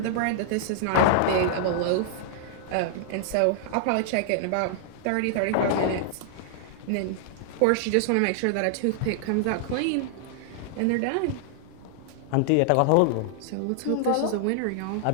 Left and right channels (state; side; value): different; both; correlation -0.01